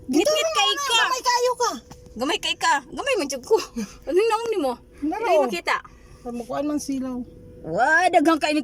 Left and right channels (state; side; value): identical; both; correlation 1.00